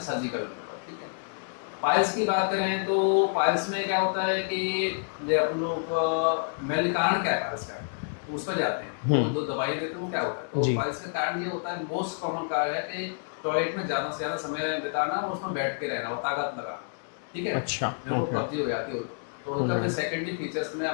सर्जिकल रिमूवल, ठीक है। पाइल्स की बात करें तो पाइल्स में क्या होता है कि जो अपन लोग मेन कारण क्या है पाइल्स का, तो उस पर जाते हैं। तो जो दवाइयाँ देते हैं वो क्या होता है, तो जी। पाइल्स का कारण ये होता है, मोस्ट कॉमन कारण है कि टॉयलेट में ज़्यादा से ज़्यादा समय बिताना और उसमें बैठ के रहना और ताकत लगाना, ठीक है। अच्छा, मेरे को ओके। कब्जी हो जाती हो तो उनका फिर सेकेंडरी फीचर्स में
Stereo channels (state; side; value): silent; right; digital silence